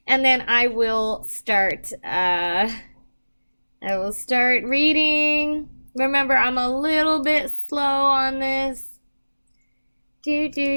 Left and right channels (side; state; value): both; inverted; correlation -1.00